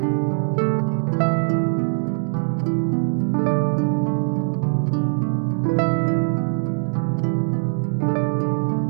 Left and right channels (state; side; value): silent; left; digital silence